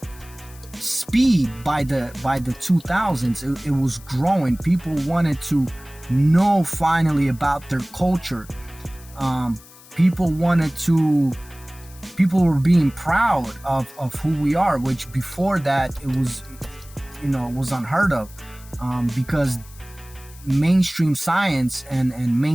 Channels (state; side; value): noise; left; hiss, 22 dB below the sound